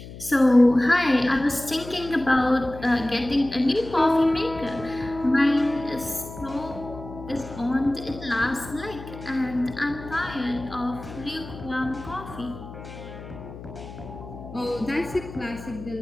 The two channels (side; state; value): left; noise; hum, 14 dB below the sound